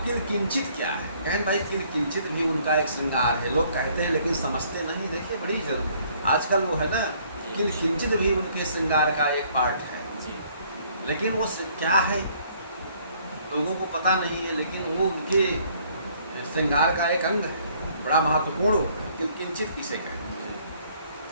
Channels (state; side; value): inverted; both; correlation -0.62